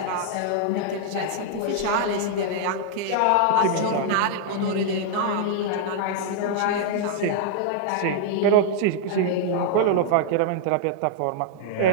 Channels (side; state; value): both; different; correlation -0.01